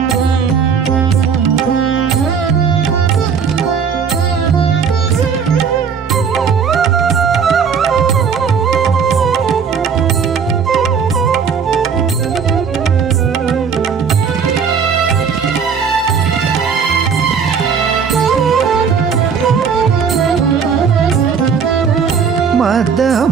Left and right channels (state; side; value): quieter; left; 6.4 dB